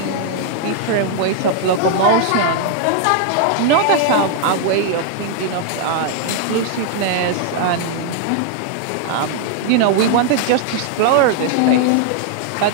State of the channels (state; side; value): different; both; correlation -0.01